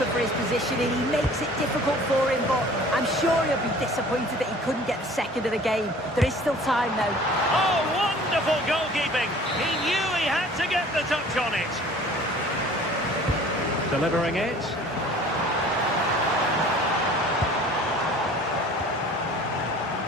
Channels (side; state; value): both; normal; correlation 0.48